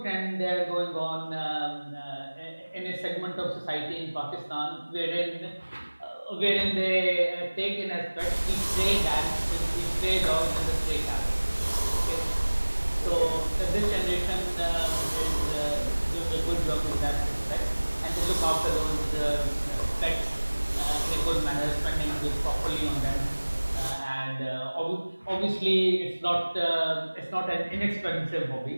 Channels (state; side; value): inverted; both; correlation -1.00